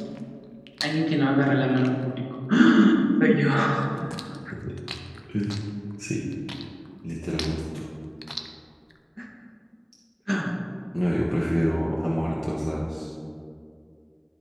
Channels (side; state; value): both; identical; correlation 1.00